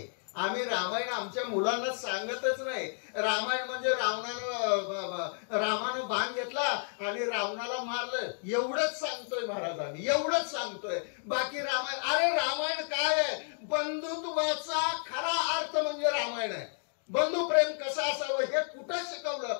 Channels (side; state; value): right; silent; 57 dB below the other